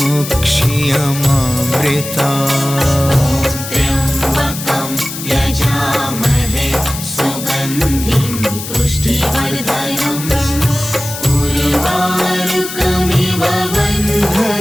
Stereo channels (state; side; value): noise; left; hiss, 9 dB below the sound